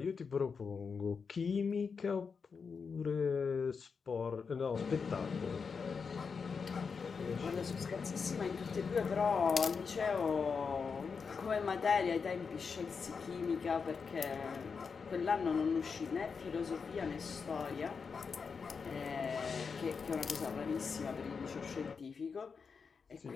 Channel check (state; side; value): quieter; right; 5.5 dB